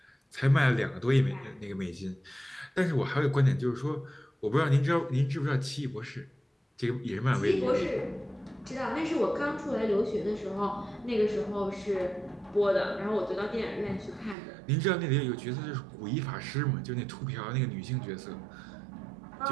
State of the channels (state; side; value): drops out; left; at 14.4 s